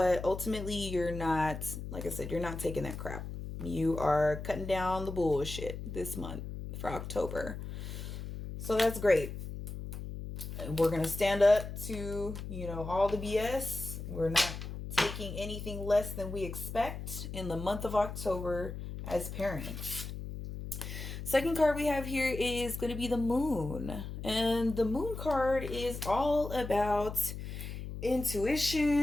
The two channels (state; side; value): noise; left; hum, 8 dB below the sound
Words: ultimately you're not, like I said, you're not taking that crap. You are cutting down the bullshit this month for October. So that's great. We're going to stand up to, all the BS. We're not taking anything less than we expect in the month of October as parents. Second card we have here is going to be the Moon. And the Moon card is all about